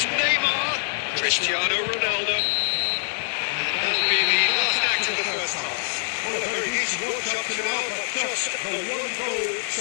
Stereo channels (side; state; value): right; silent; digital silence